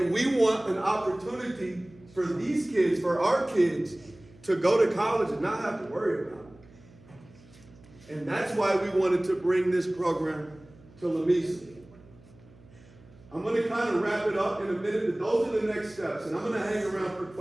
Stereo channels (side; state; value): right; noise; hum, 24 dB below the sound